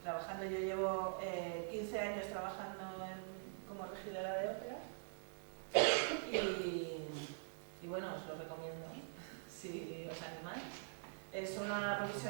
trabajando. Yo llevo 15 años trabajando como regidora de ópera y bueno, os lo recomiendo si os animáis. Es una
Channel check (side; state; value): left; silent; digital silence